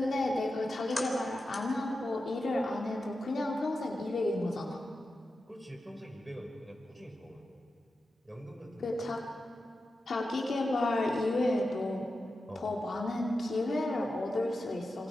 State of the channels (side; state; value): both; normal; correlation 0.91